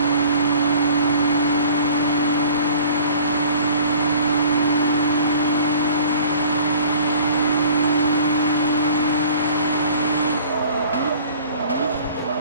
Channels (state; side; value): inverted; both; correlation -0.48